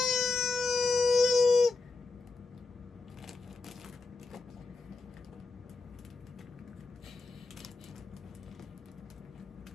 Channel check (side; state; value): right; quieter; 3.7 dB